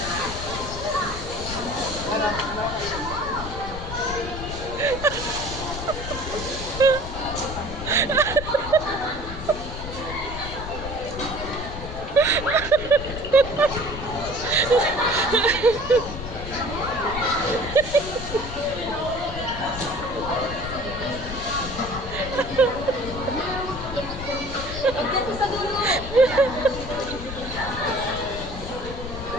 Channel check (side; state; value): left; noise; rumble, 8 dB below the sound